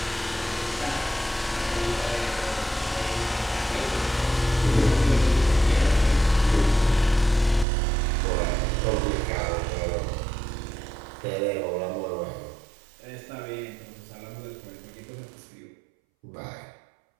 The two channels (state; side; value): drops out; left; at 7.7 s